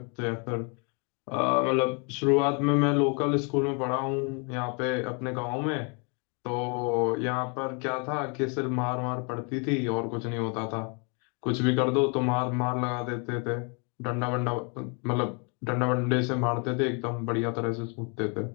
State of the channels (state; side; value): quieter; right; 35.4 dB